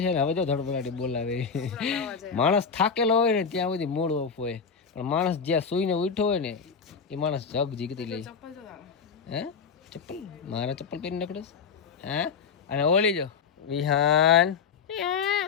છે ને હવે જો ધડપડાટી બોલાવે માણસ થાકેલો હોય ને ત્યાં સુધી મોડ ઓફ હોય પણ માણસ જ્યાં સૂઈને ઉઠ્યો હોય ને એ માણસ જબ જીગતી લે હે ચપ્પલ મારા ચપ્પલ પહેરી નકડસ હે અને ઓલી જો વિહાન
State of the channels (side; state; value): right; quieter; 6.0 dB